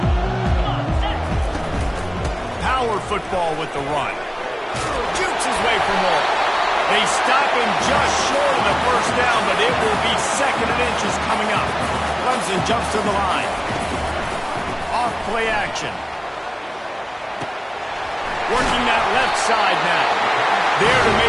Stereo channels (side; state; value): both; identical; correlation 1.00